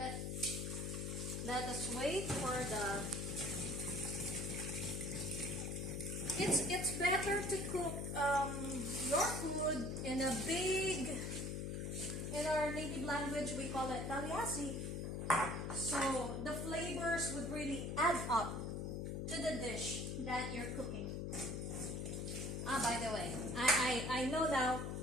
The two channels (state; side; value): noise; left; hum, 3 dB below the sound